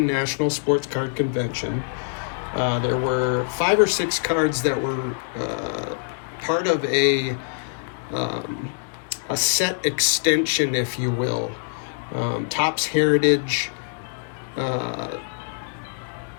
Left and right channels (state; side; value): silent; right; digital silence